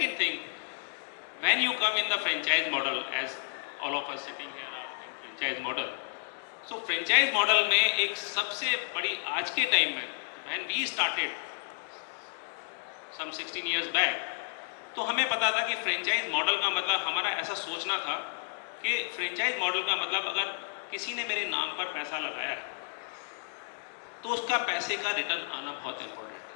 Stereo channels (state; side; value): silent; right; digital silence